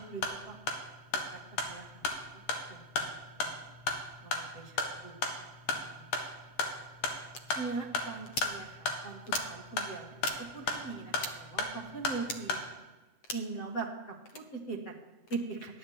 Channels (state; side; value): late; right; 8.0 ms